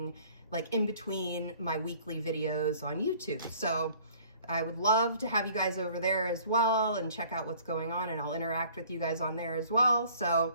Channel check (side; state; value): both; inverted; correlation -0.54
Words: like in between my weekly videos on YouTube. So I would love to have you guys over there as well and check out what's going on, and I'll interact with you guys on there as well.